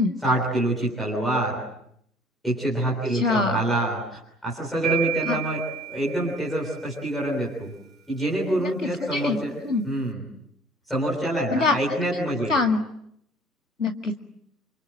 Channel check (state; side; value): normal; both; correlation 0.53